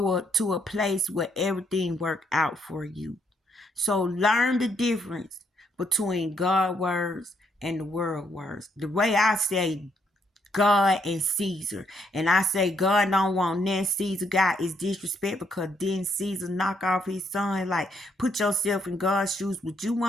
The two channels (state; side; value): normal; both; correlation 0.73